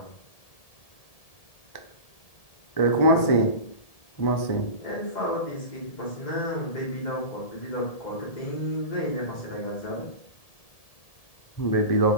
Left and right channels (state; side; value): late; right; 1.7 ms